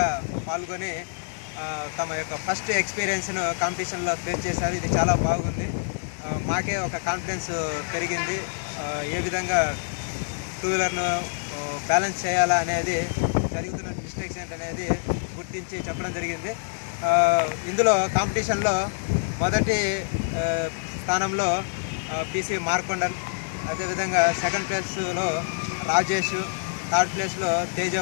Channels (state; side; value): silent; right; digital silence